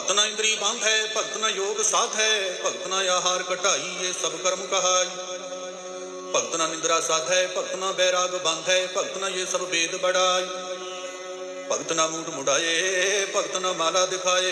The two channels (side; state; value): both; identical; correlation 1.00